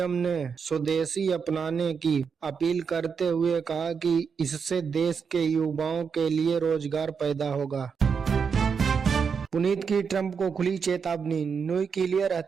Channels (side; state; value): left; quieter; 6.1 dB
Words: ने स्वदेशी अपनाने की अपील करते हुए कहा कि इससे देश के युवाओं के लिए रोजगार पैदा होगा। पुनीत की ट्रंप को खुली चेतावनी। न्यूक्लियर